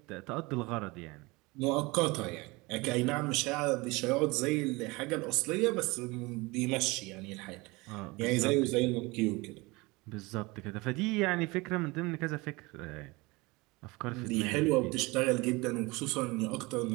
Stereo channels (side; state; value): left; quieter; 24.0 dB